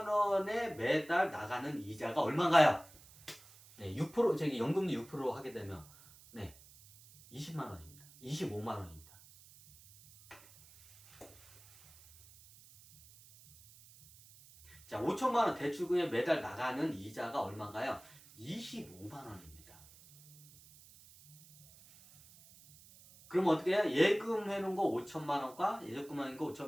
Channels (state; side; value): noise; right; hiss, 23 dB below the sound